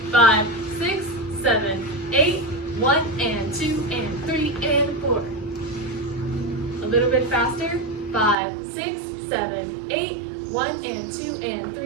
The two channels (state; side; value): drops out; left; at 8.3 s